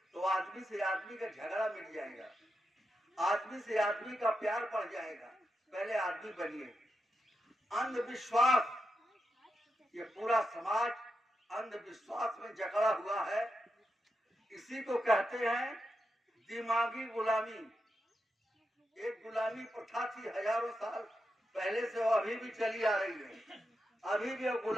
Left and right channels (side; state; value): both; normal; correlation 0.87